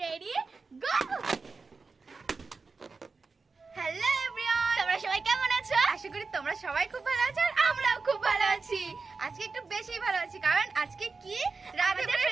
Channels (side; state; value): left; quieter; 4.3 dB